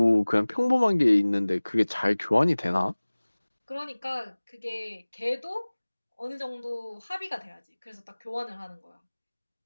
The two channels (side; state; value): both; inverted; correlation -1.00